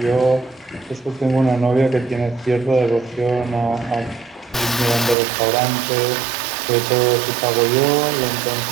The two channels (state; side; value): drops out; left; at 5.2 s